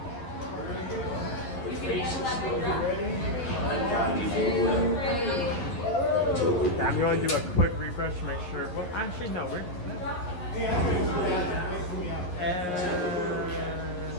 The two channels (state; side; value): late; right; 11 ms